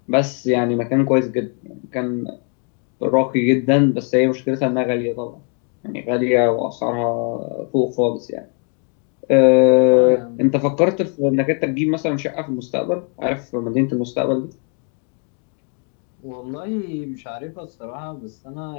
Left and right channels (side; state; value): right; quieter; 39.3 dB